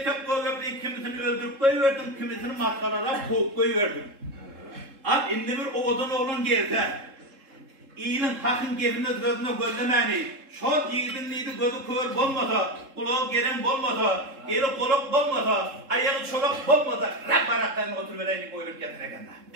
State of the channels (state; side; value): late; left; 3.7 ms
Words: goýup kimisini öldürüp goýberdim, kimisini matgalara koýup goýberdim. Ab indi bir oğdan oğlan gelse, iyinin hakyň gebini gözüne gözlemäni, şol ýigidin nidi gözü kör bolmasa, kulagy geren bolmasa, eli golak bolmasa, aýagy çolak bolmasa, rap barakdan oturup bereýlik goýup ýatar eken.